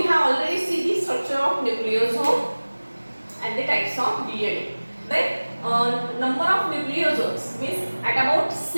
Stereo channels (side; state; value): both; inverted; correlation -1.00